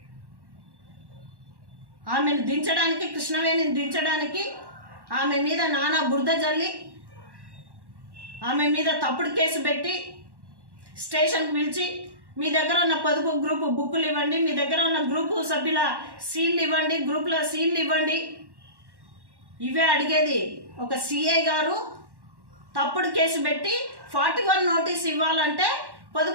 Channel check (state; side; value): late; left; 1.1 ms